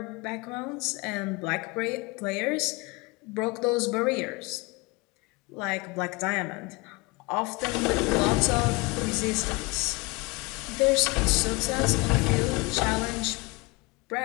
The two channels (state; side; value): quieter; right; 26.2 dB